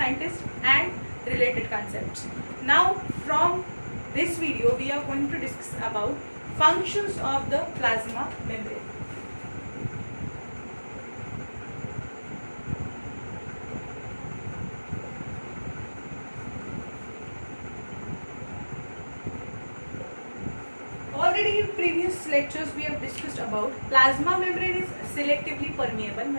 and related concepts. Now from this video we are going to discuss about functions of the plasma membrane. Already in previous lectures we have discussed about plasma membrane is selectively permeable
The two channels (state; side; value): inverted; both; correlation -1.00